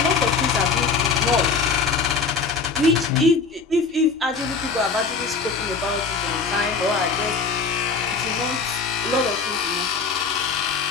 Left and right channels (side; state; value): right; quieter; 4.7 dB